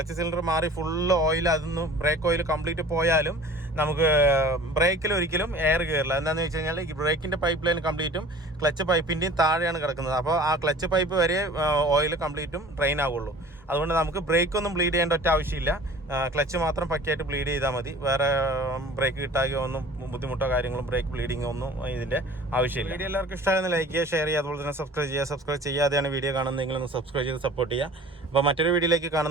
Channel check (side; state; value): both; normal; correlation 0.44